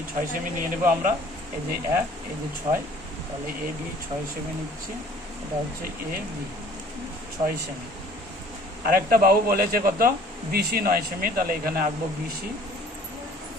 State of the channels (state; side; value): normal; both; correlation 0.53